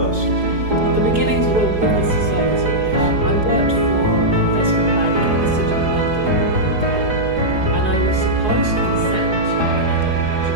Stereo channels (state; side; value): late; left; 4.8 ms